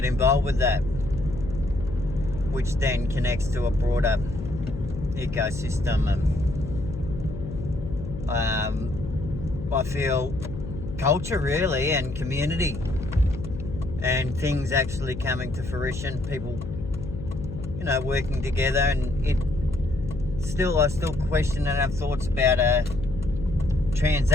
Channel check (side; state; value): left; noise; hum, 9 dB below the sound